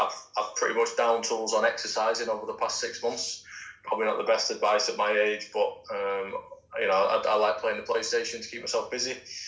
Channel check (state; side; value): identical; both; correlation 1.00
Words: pretty much down tools on exercising over the past 6 months. Probably not the best advice at my age, but I like playing the PlayStation to keep myself busy.